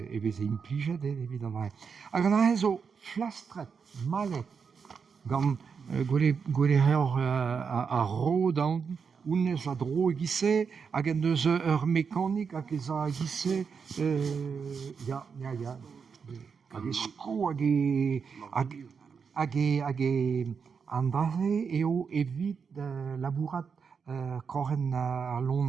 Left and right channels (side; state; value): left; quieter; 6.0 dB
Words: e veze implijet, evidemment. Hag an ahe zo flastret, malet, gant gwele a ro daout, ounez a dro egise, hag en deus ur mekanik hag ez a egise, hag e sko hag e andraze eo evit labourat kroren ar